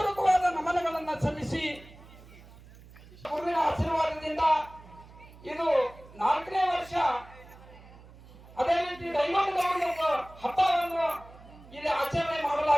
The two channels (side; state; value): right; noise; hum, 21 dB below the sound